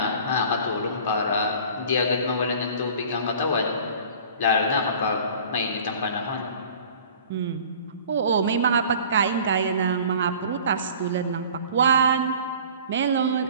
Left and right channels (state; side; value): inverted; both; correlation -0.46